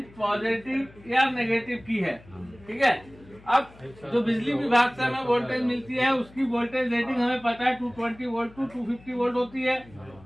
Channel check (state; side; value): noise; left; hum, 24 dB below the sound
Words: पॉजिटिव या नेगेटिव की है, ठीक है। अब जो बिजली विभाग से हमें वोल्टेज मिलती है उसकी वोल्टेज रेटिंग हमें पता है 220 वोल्ट टू 250 वोल्ट होती है